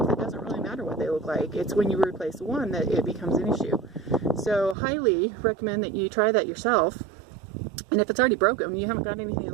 it doesn't really matter what they look like. It's when you replace one that it becomes an issue. So highly recommend that you try that yourself. And if it's already broken, you haven't got anything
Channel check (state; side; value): drops out; left; at 4.8 s